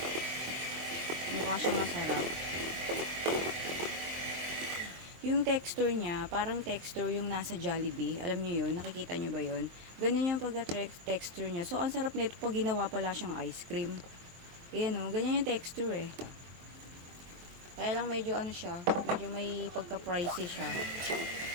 Mukha siyang masarap. Yung texture niya, parang texture yung nasa Jollibee. Alam niyo yun? Nakikita niyo ba yun? Ganyan yung pagka-texture niya. So, ang sarap nito pag ginawa pala siyang ice cream. Ayan o, ganyan yung texture eh. Kaya lang medyo ano siya, medyo may pagka-pricey siya.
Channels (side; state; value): left; late; 23 ms